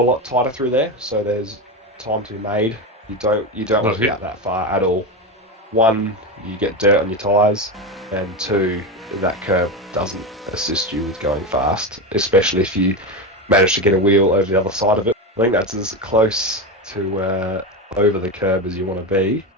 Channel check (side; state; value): both; normal; correlation 0.17